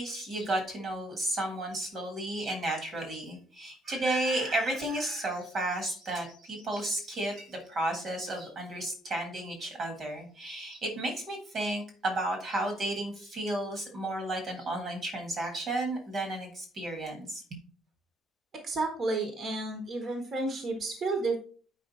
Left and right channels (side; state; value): both; normal; correlation 0.69